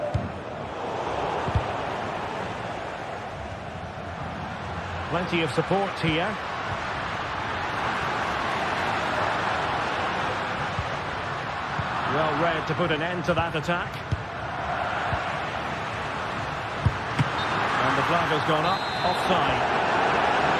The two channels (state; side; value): identical; both; correlation 1.00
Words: Plenty of support here. Well read to put an end to that attack. And the flag has gone up, offside.